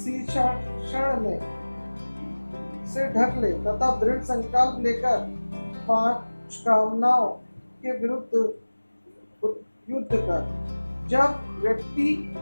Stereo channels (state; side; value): inverted; both; correlation -1.00